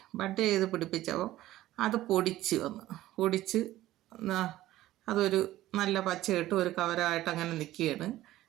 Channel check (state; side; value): quieter; left; 15.2 dB